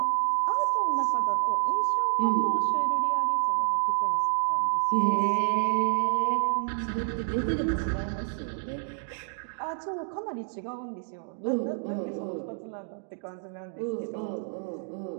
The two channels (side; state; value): left; silent; digital silence